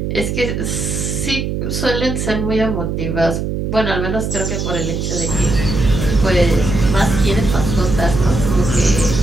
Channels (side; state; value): right; noise; hum, 2 dB below the sound